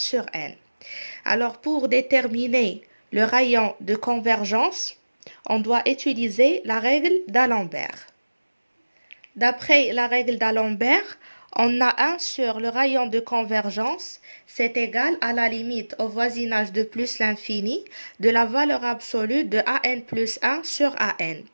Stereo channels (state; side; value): inverted; both; correlation -1.00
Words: n. Alors, pour déterminer le rayon de convergence, on doit utiliser la règle d'Alembert. D'après la règle d'Alembert, on a 1 sur le rayon de convergence, c'est égal à la limite au voisinage de plus l'infini de la valeur absolue de an plus 1 sur an.